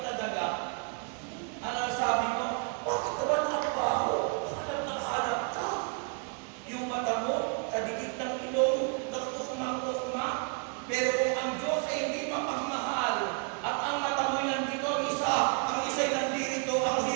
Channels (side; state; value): left; quieter; 38.9 dB